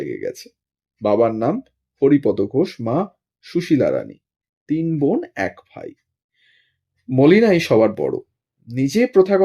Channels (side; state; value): both; identical; correlation 1.00